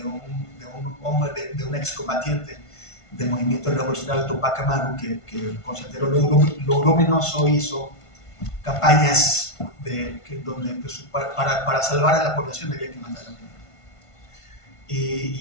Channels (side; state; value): right; late; 1.5 ms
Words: un hombre, de un excombatiente del movimiento revolucionario Tupac Amaru, que consideró lo luminoso, hizo campañas donde pues, para salvar a la población había que matar a la población.